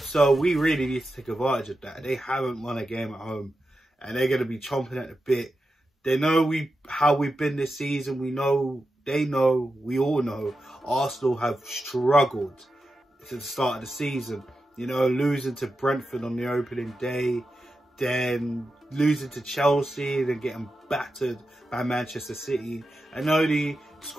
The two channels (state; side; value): normal; both; correlation 0.90